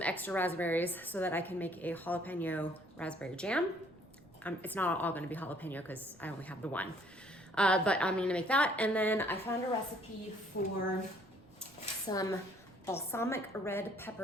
extra raspberries so that I can make a jalapeno raspberry jam. It's not all gonna be jalapeno because I only have the one. But I'm gonna make that. And then I found a recipe for some balsamic red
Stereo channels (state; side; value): noise; right; rumble, 28 dB below the sound